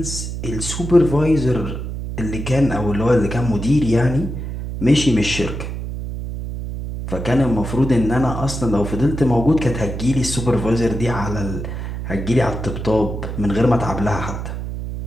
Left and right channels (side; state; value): right; noise; hum, 6 dB below the sound